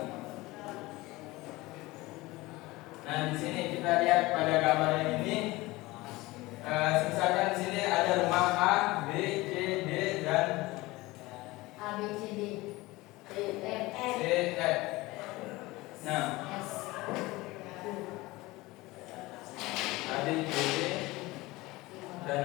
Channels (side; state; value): right; quieter; 20.6 dB